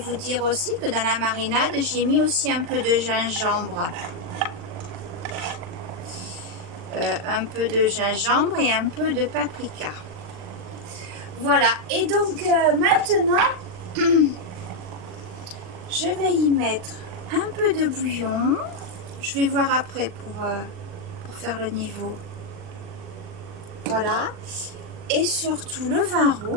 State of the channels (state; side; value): late; left; 39 ms